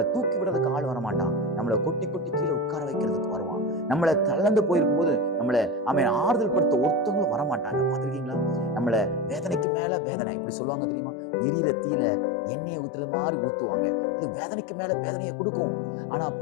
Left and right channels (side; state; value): right; drops out; at 9.7 s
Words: தூக்கி விடுறதுக்கு ஆள் வரமாட்டான். நம்மளை கொட்டி கொட்டி கீழே உட்கார வைக்கிறதுக்கு வருவான். நம்மளை தளர்ந்து போயிருக்கும் போது நம்மளை ஆறுதல் படுத்த ஒருத்தவங்களும் வரமாட்டாங்க. பார்த்துருக்கீங்களா? நம்மளை வேதனைக்கு மேல வேதனை, இப்படி சொல்லுவாங்க தெரியுமா? எரியிற தீல எண்ணெயை ஊத்துறது மாதிரி ஊத்துவாங்க. அது வேதனைக்கு மேல வேதனையை கொடுக்கும். ஆனா